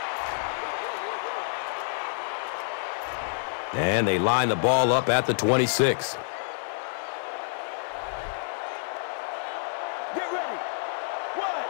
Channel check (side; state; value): right; silent; digital silence